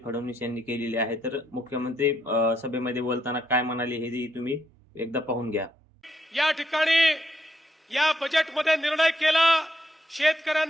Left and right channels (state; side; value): normal; both; correlation 0.77